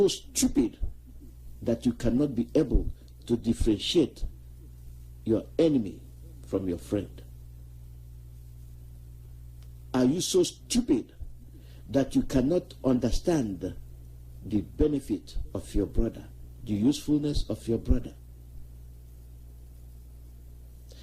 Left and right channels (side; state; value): both; identical; correlation 1.00